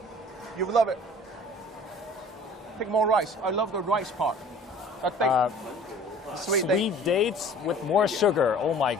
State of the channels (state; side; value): normal; both; correlation 0.48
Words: You will love it. Take more rice. I love the rice part. Sweet Sweet dates with more sugar. Oh my